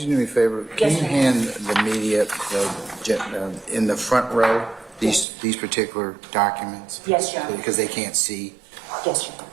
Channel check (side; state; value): left; drops out; at 5.2 s